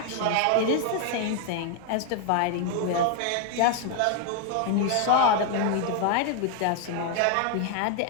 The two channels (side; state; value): both; different; correlation 0.00